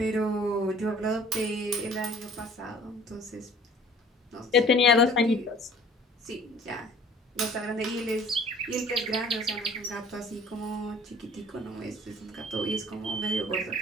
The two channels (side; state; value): both; normal; correlation 0.50